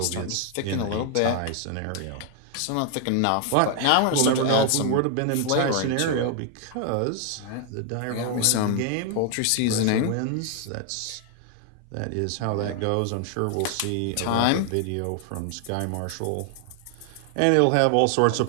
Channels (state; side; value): different; both; correlation 0.00